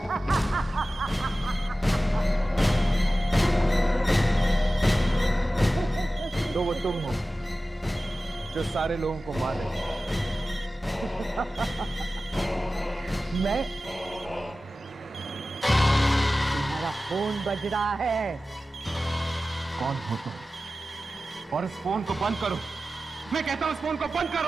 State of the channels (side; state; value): both; normal; correlation 0.95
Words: तो वो तुम हो जो सारे लोगों को मार रहे हो। मैं? तुम्हारा फोन बज रहा है। कौन हो तुम? और इस फोन को बंद करो। मैं कहता हूं इस फोन को बंद